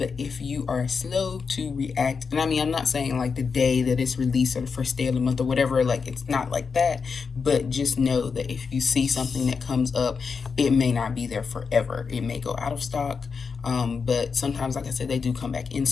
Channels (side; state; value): right; quieter; 5.5 dB